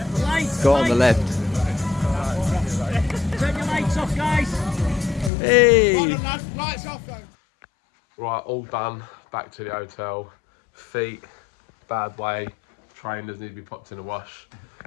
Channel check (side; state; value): right; drops out; at 5.3 s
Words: Go on the left. Turn your lights off, guys. Hey! Lights off though. Right, all done. Back to the hotel. Feet, bad way. Trainers need to be popped in the wash.